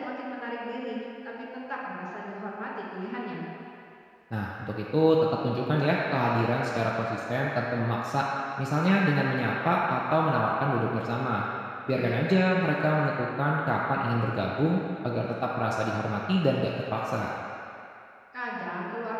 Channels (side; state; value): both; identical; correlation 1.00